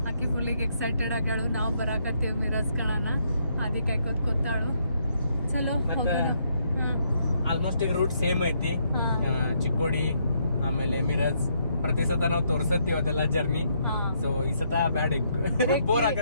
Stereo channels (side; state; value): both; inverted; correlation -0.73